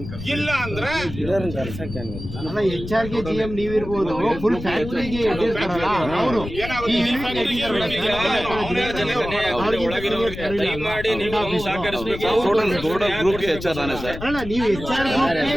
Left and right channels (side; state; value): left; noise; rumble, 10 dB below the sound